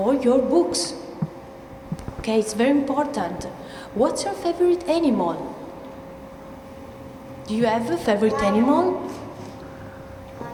your books. Okay, it's very important. What's your favorite animal? Do you have a favorite animal?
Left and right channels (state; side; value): identical; both; correlation 1.00